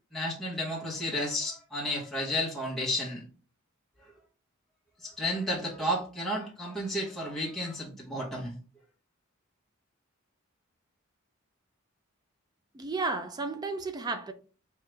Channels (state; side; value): normal; both; correlation 0.35